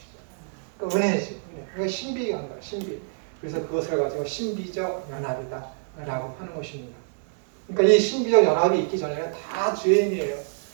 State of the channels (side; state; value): left; silent; digital silence